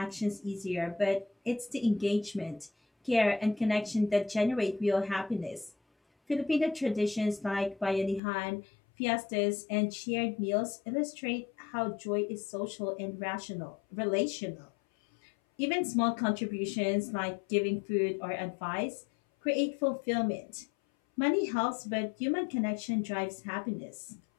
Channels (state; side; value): drops out; right; at 8.2 s